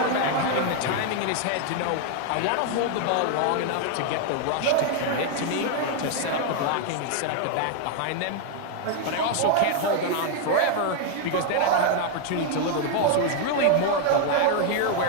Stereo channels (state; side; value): different; both; correlation 0.00